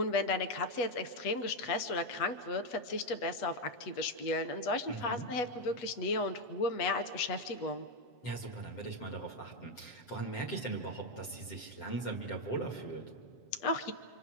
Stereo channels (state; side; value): late; right; 7.7 ms